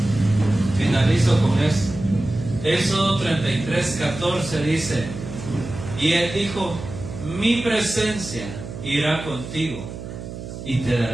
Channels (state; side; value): noise; right; hum, 10 dB below the sound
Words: Finalizo con eso. Éxodo 33:14 dice: y Él dijo, mi presencia irá contigo y te